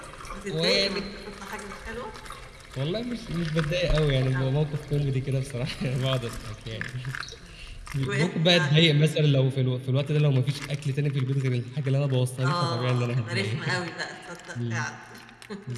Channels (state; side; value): identical; both; correlation 1.00